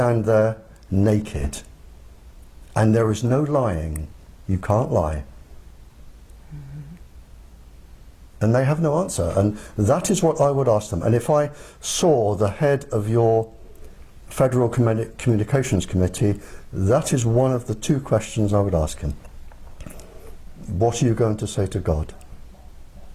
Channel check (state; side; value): identical; both; correlation 1.00